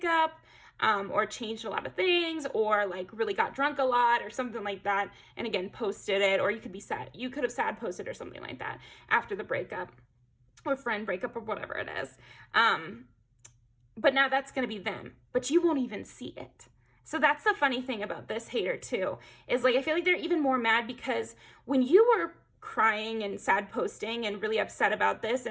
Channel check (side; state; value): both; identical; correlation 1.00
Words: or changed a lot of things, or like really got drunk a lot or something like that. And again, posted it, or you could be sad. You could have sad posted or something like that after the breakup, or friend breakup, or whatever it is. But now that's going to be them, but you won't even see it. So that's the funny thing about this hater too, is like, I feel like they're even more mad because when you were crying and sad posting and really upset about this